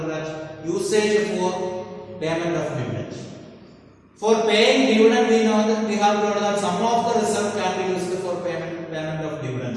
that usage for payment of dividend. For paying dividend, we know that we have told that some of the reserve can be used for payment of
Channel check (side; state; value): both; identical; correlation 1.00